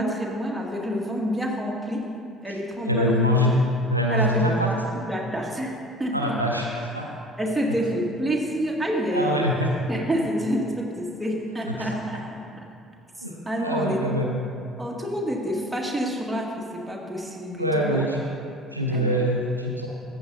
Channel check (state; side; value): normal; both; correlation 0.39